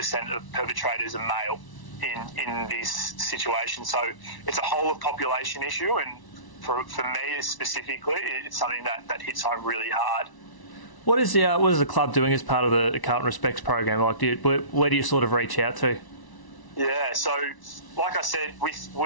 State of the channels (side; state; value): right; late; 1.0 ms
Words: of perpetrators are male in this situation. So it's a whole of population issue, and for me specifically, it's something that hits home really hard. What is the club doing as part of the Carlton Respects program? Like, where do you sort of reach out to? Yeah, so like I said, with